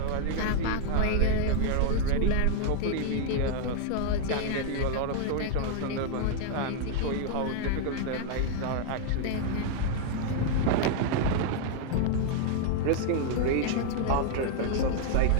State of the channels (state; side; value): different; both; correlation 0.00